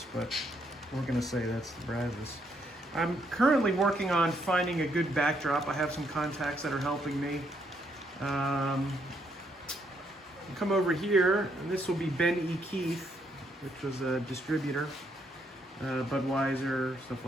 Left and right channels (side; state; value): both; normal; correlation 0.74